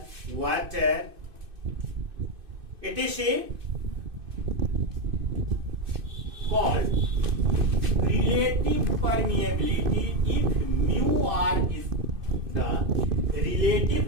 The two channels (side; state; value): left; late; 2.6 ms